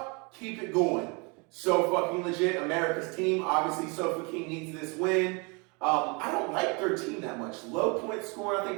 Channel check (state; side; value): quieter; left; 30.8 dB